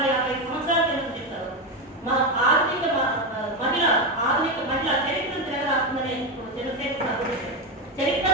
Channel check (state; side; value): normal; both; correlation 0.12